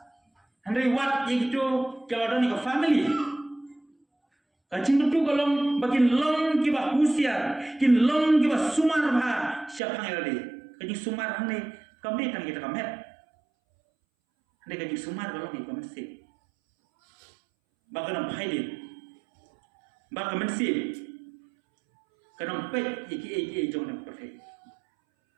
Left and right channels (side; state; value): left; drops out; at 9.8 s